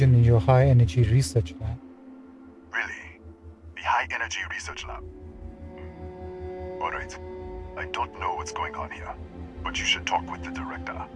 in your high energy research lab. Really? The high energy research lab? Alright. I don't know what's going on here. But you should talk with the director.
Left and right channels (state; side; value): identical; both; correlation 1.00